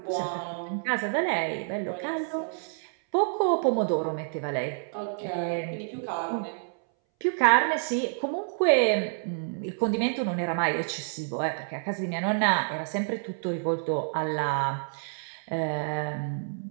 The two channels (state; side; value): silent; left; 59 dB below the other